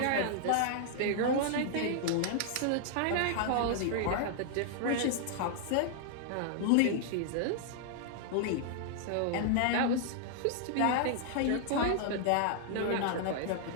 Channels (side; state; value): both; different; correlation -0.01